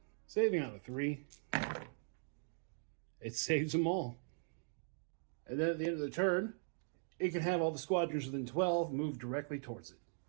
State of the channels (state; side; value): silent; left; digital silence